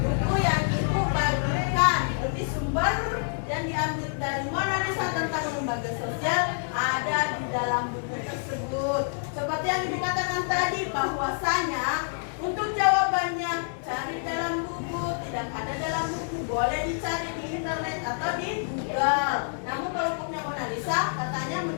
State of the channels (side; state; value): right; silent; digital silence